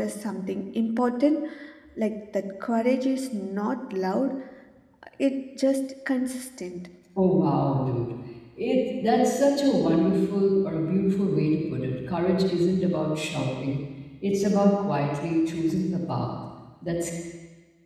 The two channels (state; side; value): identical; both; correlation 1.00